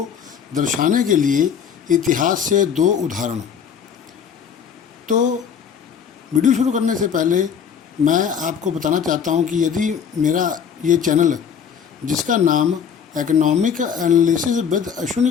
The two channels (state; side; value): quieter; right; 7.4 dB